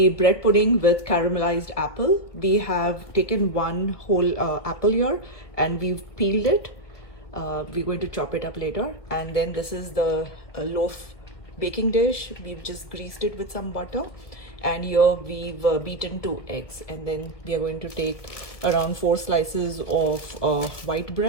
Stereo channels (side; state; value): right; late; 1.7 ms